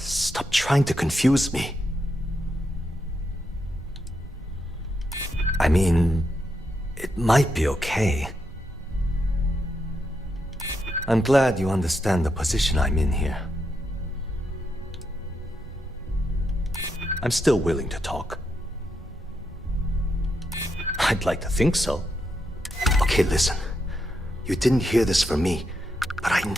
trying to confuse me. I mean, it might be okay. I'm glad you understand the position I'm in here. I'm still willing to talk. I'd like to think so. Okay, listen. You didn't hear this from me, but I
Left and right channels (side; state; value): both; normal; correlation 0.82